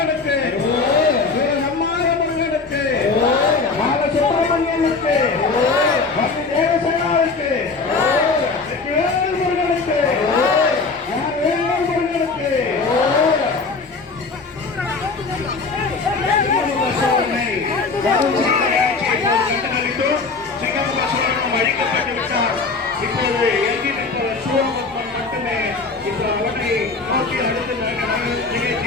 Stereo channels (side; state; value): right; quieter; 4.2 dB